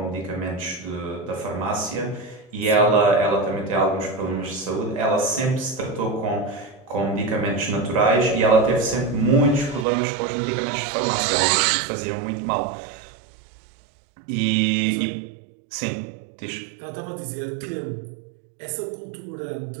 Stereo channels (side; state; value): left; drops out; at 9.9 s